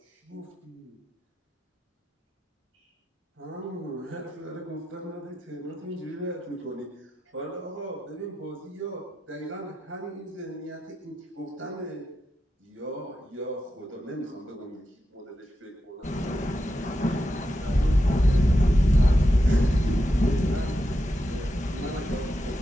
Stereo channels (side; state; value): both; normal; correlation 0.87